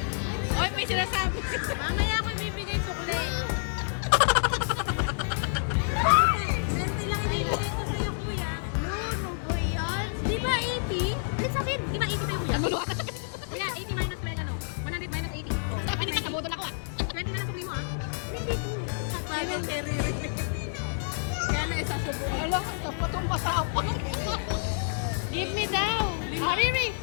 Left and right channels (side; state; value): right; silent; digital silence